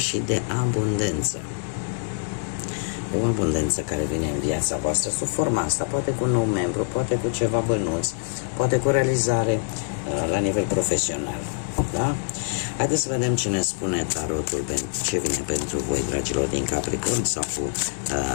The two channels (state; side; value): silent; right; digital silence